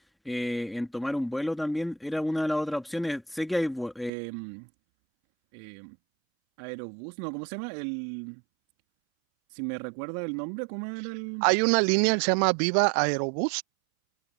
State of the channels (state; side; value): drops out; left; at 4.1 s